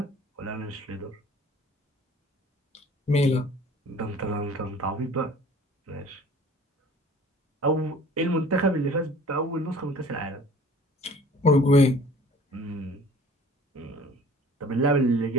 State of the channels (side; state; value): both; normal; correlation 0.49